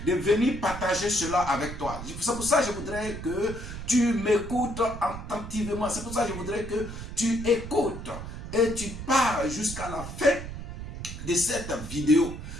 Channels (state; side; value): noise; right; rumble, 9 dB below the sound